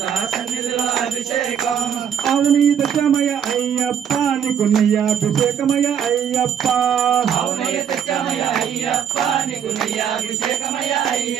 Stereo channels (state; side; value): quieter; left; 8.4 dB